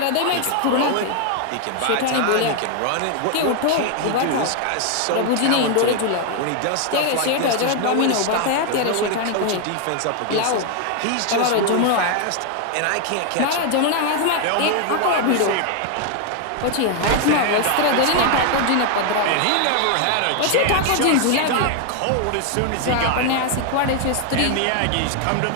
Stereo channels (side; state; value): both; different; correlation 0.00